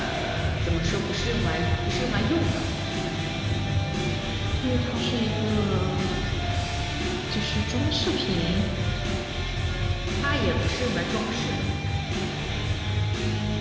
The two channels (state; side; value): identical; both; correlation 1.00